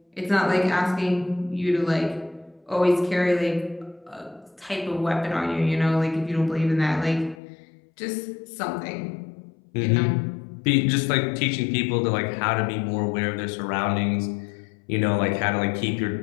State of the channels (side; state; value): right; drops out; at 7.4 s